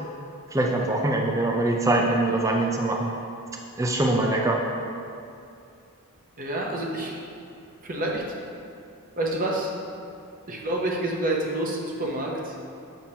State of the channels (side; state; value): both; normal; correlation 0.41